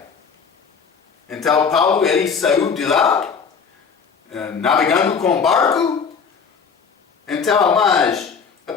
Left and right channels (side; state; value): right; quieter; 6.0 dB